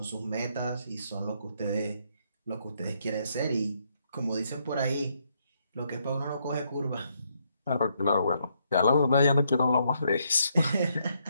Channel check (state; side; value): inverted; both; correlation -0.75